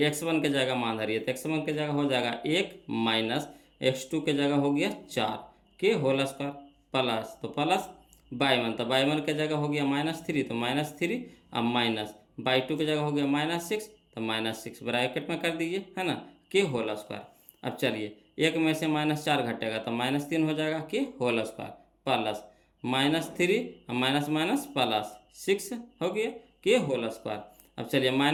x1 के जगह मान धरिए, तो x1 के जगह हो जाएगा 1 माइनस x2 के जगह हो गया 4 के होल स्क्वायर प्लस, तो प्लस बाई 1, तो बाई 1 के जगह हो गया -3, तो -3, अब माइनस बाई 2 की जगह हो गया -6, तो -6 ब्रैकेट में कर दीजिए, है ना, के होल स्क्वायर। अब चलिए एक में से -4 घटेगा तो -3 हो जाएगा के whole square plus -3 minus minus plus 6 हो गया के होल स्क्वायर। अब चलिए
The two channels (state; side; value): identical; both; correlation 1.00